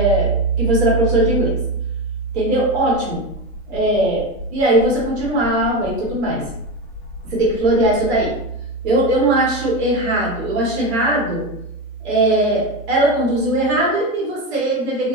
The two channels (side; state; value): both; normal; correlation 0.18